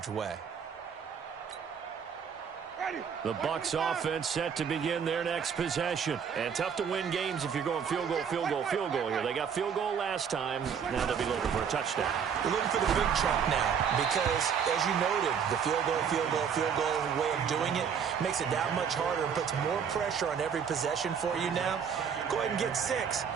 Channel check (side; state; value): left; quieter; 7.2 dB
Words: way. The Bucs offense set to begin their next possession. And tough to win games if you're going field goal here. They got field goal last time. Now they'll be looking for a touchdown. They're looking for the big chunk now because, as you noted, the field goal way of doing it makes it that much harder and puts more pressure on every possession for you now. Go ahead and get 6